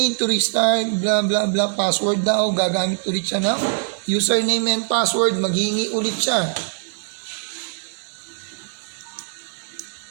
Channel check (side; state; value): left; silent; digital silence